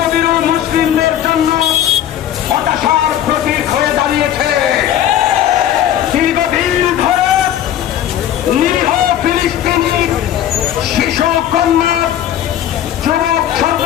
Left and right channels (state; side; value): quieter; right; 11.2 dB